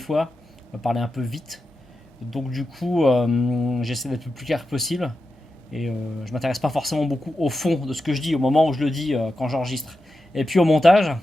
On va parler un peu vite. Donc, du coup, j'essaie d'être le plus clair possible. Et je m'intéresse pas forcément beaucoup au fond de ce que je dis au moment où je le dis quand j'enregistre. Et puis au montage,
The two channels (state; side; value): normal; both; correlation 0.90